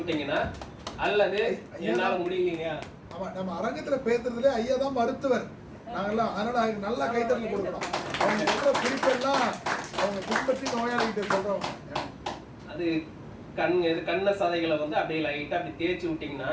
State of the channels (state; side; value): identical; both; correlation 1.00